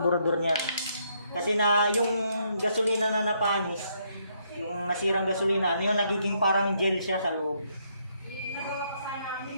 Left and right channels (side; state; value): both; inverted; correlation -0.73